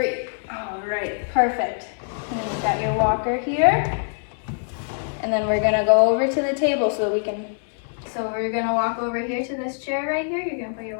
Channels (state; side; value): silent; right; digital silence